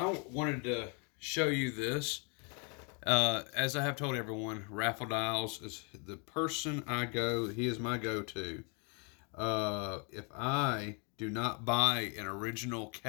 wanted to show you this. As I have told everyone, Raffle Dials is the person he is my go-to. If I do not buy an original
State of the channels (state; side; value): quieter; right; 35.1 dB